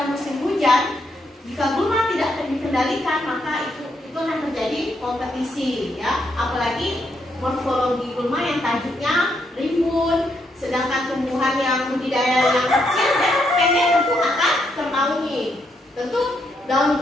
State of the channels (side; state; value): both; normal; correlation 0.77